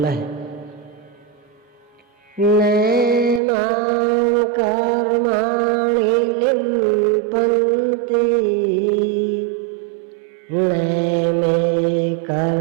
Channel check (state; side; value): drops out; left; at 3.4 s